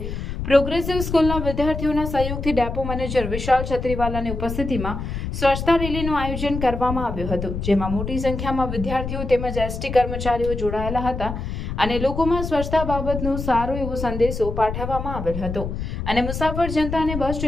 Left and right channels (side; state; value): left; noise; rumble, 5 dB below the sound